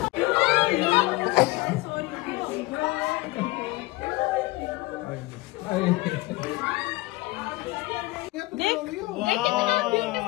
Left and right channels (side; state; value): right; quieter; 20.7 dB